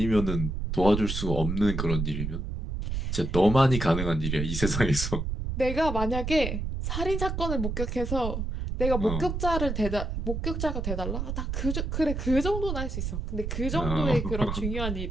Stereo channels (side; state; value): right; noise; rumble, 3 dB below the sound